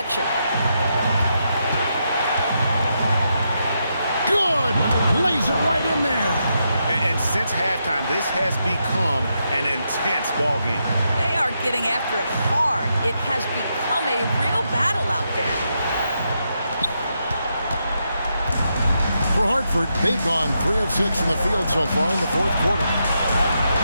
Good! Lays it right in there. And since halftime, this has become an intense ball game. They are getting after it hard. It has become a real battle out there. For Hartford, they've gone 3 of 6 in the field so far in the fourth quarter.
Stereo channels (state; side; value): inverted; both; correlation -0.82